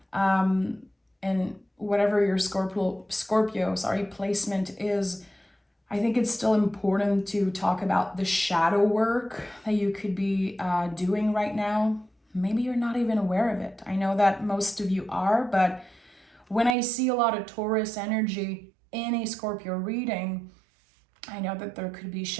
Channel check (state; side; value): drops out; left; at 16.8 s